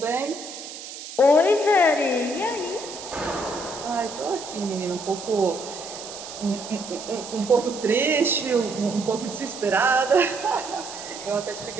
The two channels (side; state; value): right; noise; hiss, 12 dB below the sound